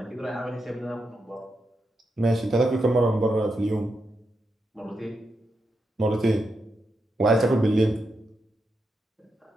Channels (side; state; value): both; normal; correlation 0.85